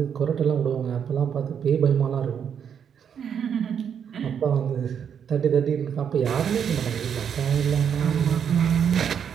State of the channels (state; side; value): quieter; left; 7.9 dB